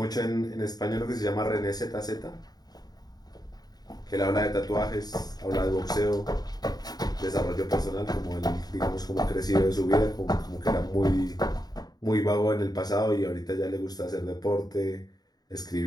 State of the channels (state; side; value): late; right; 0.19 ms